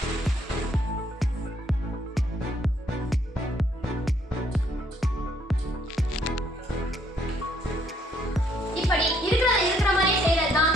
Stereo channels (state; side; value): normal; both; correlation 0.68